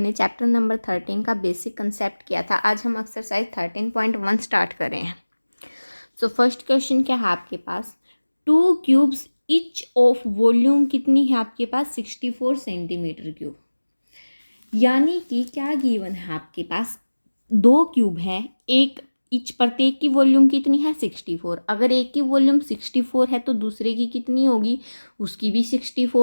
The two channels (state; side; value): inverted; both; correlation -1.00